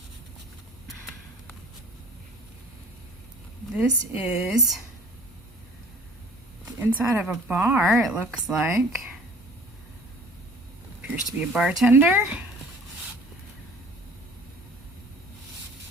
This is the inside of a bar, it looks like. Appears to be a bartender.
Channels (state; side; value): normal; both; correlation 0.49